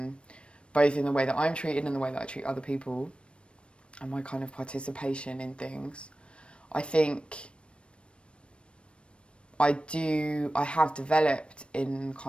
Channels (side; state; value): right; late; 0.058 ms